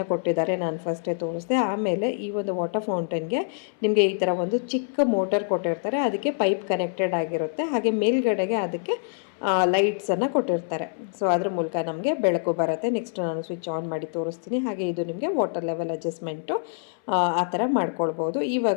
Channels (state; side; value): silent; right; 61 dB below the other